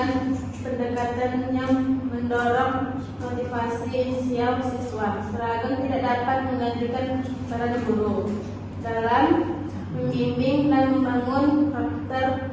pendekatan yang mendorong motivasi inisial siswa. Seragam tidak dapat menggantikan peran guru dalam membimbing dan membangun karakter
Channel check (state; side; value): identical; both; correlation 1.00